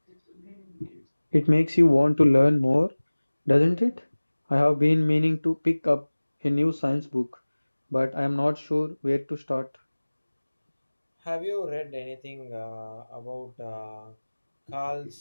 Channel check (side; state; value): both; inverted; correlation -1.00